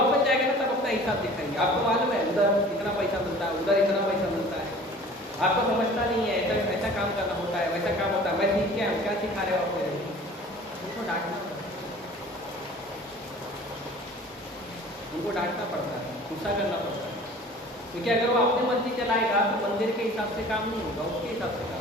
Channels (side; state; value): both; normal; correlation 0.46